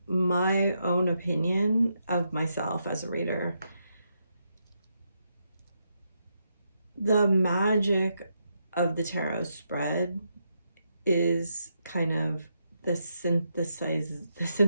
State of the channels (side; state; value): both; inverted; correlation -0.81